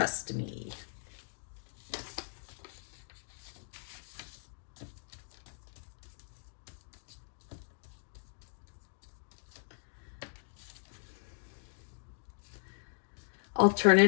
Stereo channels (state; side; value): silent; right; digital silence